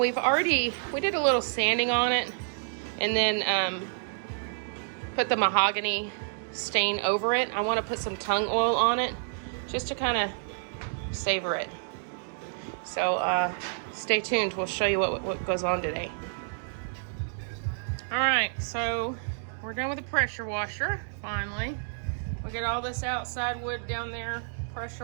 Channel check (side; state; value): left; silent; digital silence